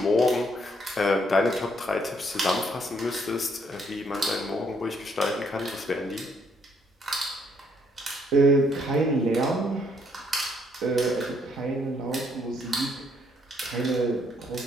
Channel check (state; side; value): normal; both; correlation 0.70